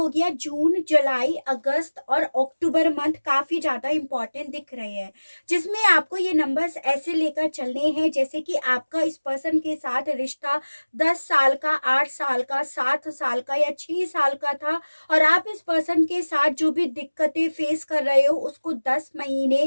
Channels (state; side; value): inverted; both; correlation -1.00